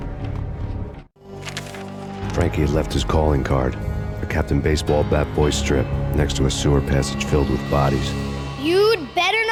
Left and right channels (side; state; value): both; identical; correlation 1.00